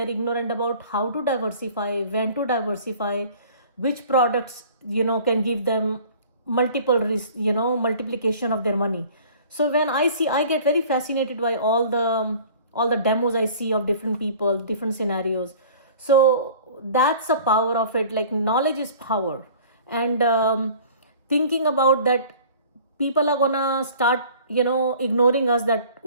ignorant about how to diversify, when to diversify, which products, can give them multiplication of their money. So when I get very fascinated by all the demos I see of different people, different scenarios. So that's the power of it. Like, knowledge is power. And thinking about that people are gonna start ignoring us, that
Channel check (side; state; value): both; inverted; correlation -0.48